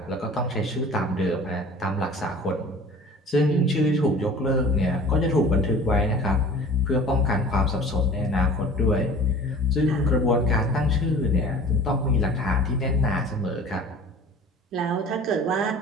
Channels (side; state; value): both; normal; correlation 0.43